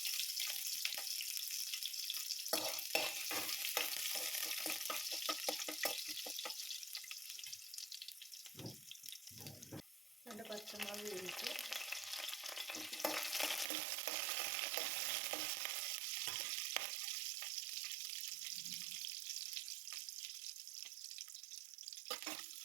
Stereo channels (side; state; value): left; drops out; at 13.7 s